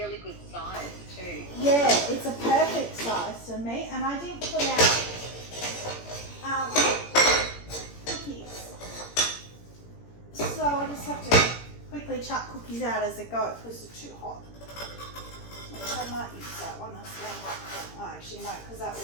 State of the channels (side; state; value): right; late; 17 ms